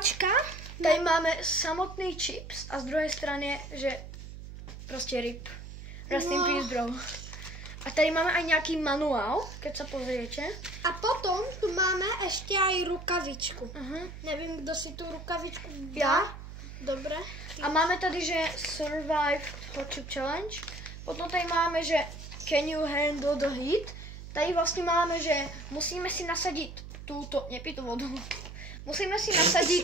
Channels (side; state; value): right; noise; hum, 12 dB below the sound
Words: tady máme samotný chips a z druhej strany je, že proste rip. Rest in peace, bro. A tady máme aj nejaký manuál, keď sa pozriete. A potom tu máme ešte aj rukavičku. Nevím, kdo si tú rukavičku dá. Ja. Dobre. A máme tady, že Survive Hot Chip Challenge. Potom tady máme, že Can you handle the heat? Tady vlastne máme, že musíme si nasadiť túto, nepij tú vodu. Musíme si